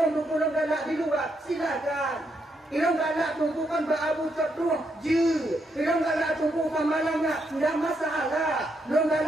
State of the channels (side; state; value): both; normal; correlation 0.78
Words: tungku galak di luar, silakan. Ilang galak tungkukan berabu terduh, je. Ilang galak tungku pamalangnya, tidak masalah. Ilang